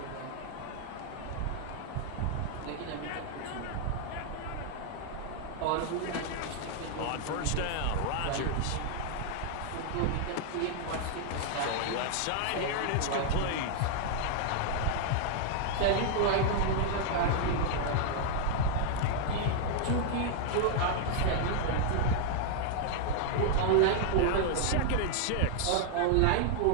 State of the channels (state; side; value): different; both; correlation 0.00